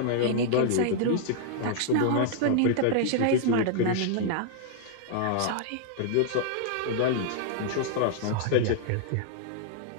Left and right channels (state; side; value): different; both; correlation -0.01